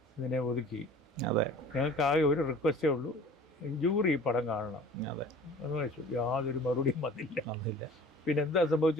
ഇതിനെ ഒതുക്കി. അതെ. ഞങ്ങൾക്ക് ആകെ ഒരു റിക്വസ്റ്റേ ഉള്ളൂ, ജൂറി ഈ പടം കാണണം. അതെ എന്ന് വെച്ചു. യാതൊരു മറുപടിയും വന്നില്ല. പിന്നെ എന്താ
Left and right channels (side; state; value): both; normal; correlation 0.45